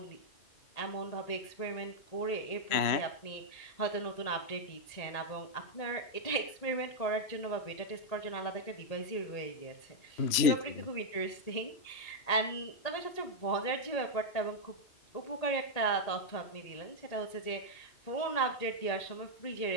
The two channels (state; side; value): late; right; 2.9 ms